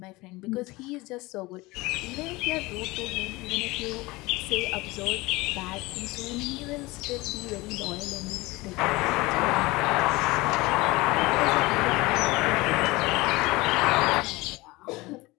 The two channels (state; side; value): quieter; right; 21.7 dB